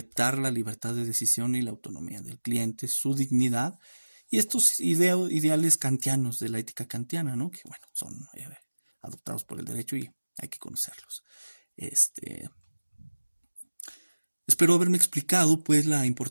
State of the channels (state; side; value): inverted; both; correlation -1.00